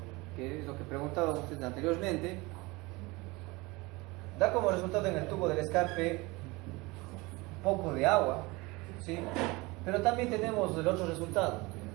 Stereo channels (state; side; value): quieter; left; 23.7 dB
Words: que es lo que preguntaban ustedes anteriormente, da como resultado en el tubo del escape un poco de agua, ¿sí? Pero también tenemos el otro resultado,